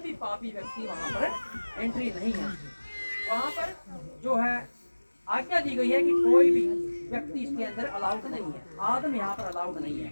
भी पापी व्यक्ति वहां पर एंट्री नहीं है। वहां पर जो है आज्ञा दी गई है कि कोई भी व्यक्ति इसके अंदर अलाउड नहीं है। आदम यहाँ पर अलाउड नहीं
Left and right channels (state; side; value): inverted; both; correlation -1.00